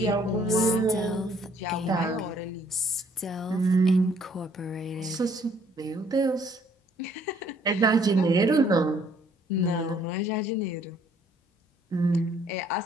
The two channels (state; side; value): normal; both; correlation 0.63